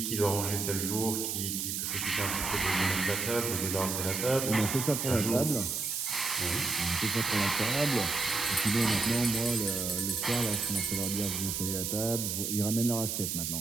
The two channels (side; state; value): right; noise; hiss, 2 dB below the sound